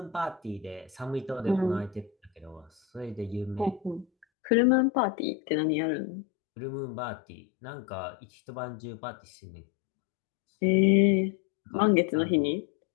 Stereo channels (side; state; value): right; drops out; at 4.2 s